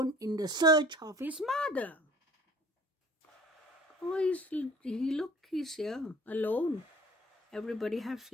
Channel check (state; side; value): normal; both; correlation 0.49